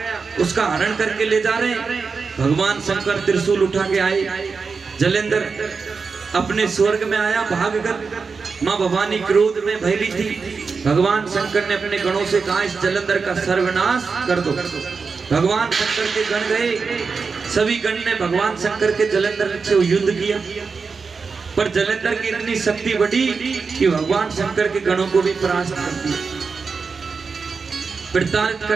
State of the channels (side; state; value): left; quieter; 4.9 dB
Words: उसका हरण करके ले जा रहे। भगवान शंकर त्रिशूल उठा के आए, जलंधर अपने स्वर्ग में आया, भाग कर। माँ भवानी क्रोध में भयली थी। भगवान शंकर ने अपने गणों से कहा, इस जलंधर का सर्वनाश कर दो। भगवान शंकर के गण गए, सभी गण ने भगवान शंकर के जलंधर से युद्ध किया, पर जलंधर की इतनी शक्ति बढ़ी कि भगवान शंकर के गणों को भी परास्त कर दिया, प्रताड़ित